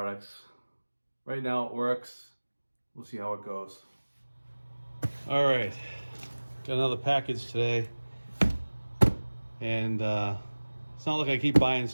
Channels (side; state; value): both; inverted; correlation -1.00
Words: Right now it works. We'll see how it goes. All right, got another package today. And it's not like I keep buying